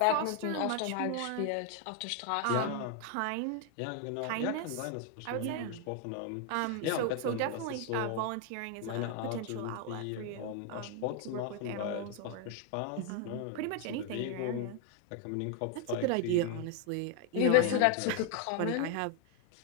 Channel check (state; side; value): different; both; correlation 0.01